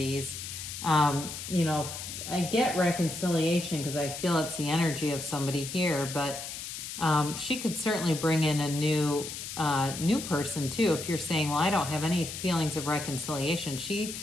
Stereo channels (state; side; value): noise; left; hiss, 8 dB below the sound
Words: You know, I get reconciliation because I feel it's the energy of somebody here, but she could certainly bring in a new person too. If you're saying, well, I don't have any feelings of reconciliation,